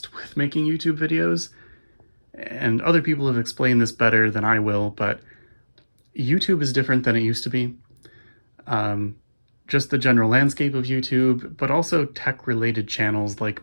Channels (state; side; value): inverted; both; correlation -1.00